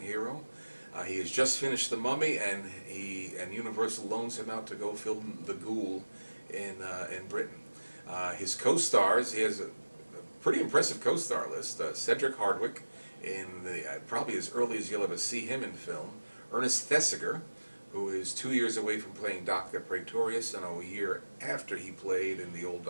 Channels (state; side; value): inverted; both; correlation -1.00